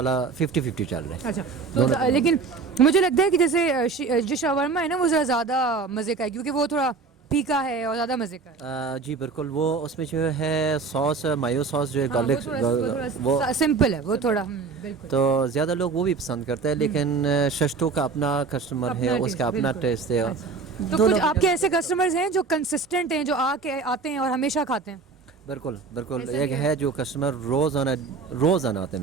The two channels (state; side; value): quieter; left; 4.7 dB